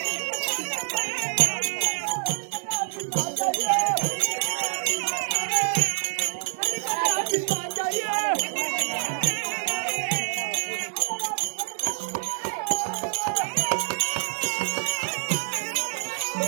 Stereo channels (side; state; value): left; silent; digital silence